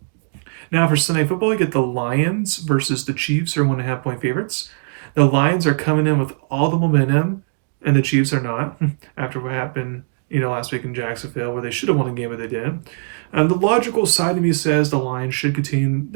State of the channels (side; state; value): left; silent; digital silence